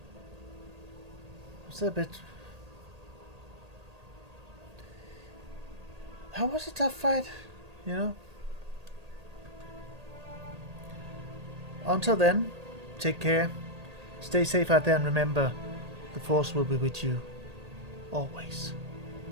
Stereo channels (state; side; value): late; left; 1.8 ms